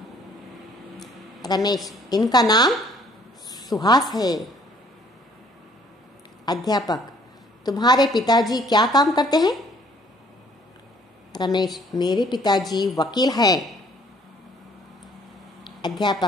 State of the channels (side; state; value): both; normal; correlation 0.60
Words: रमेश, इनका नाम सुहास है। अध्यापक, तुम्हारे पिताजी क्या काम करते हैं? रमेश, मेरे पिताजी वकील हैं।